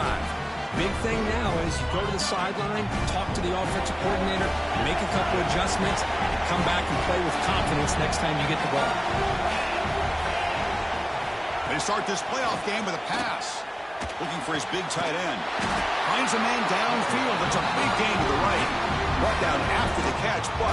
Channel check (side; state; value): both; identical; correlation 1.00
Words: Big thing now is you go to the sideline, talk to the offensive coordinator, make a couple adjustments, and come back and play with confidence next time you get the ball. They start this playoff game with a pass. Looking for his big tight end. Finds a man downfield. It's a big gain to the right. Brought down after the catch,